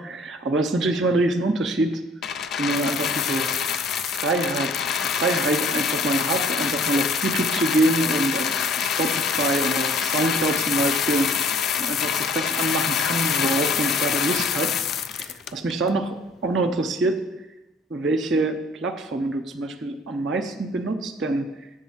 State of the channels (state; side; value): normal; both; correlation 0.55